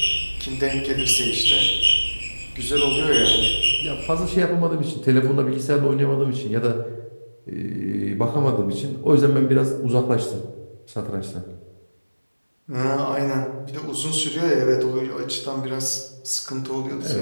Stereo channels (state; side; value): inverted; both; correlation -1.00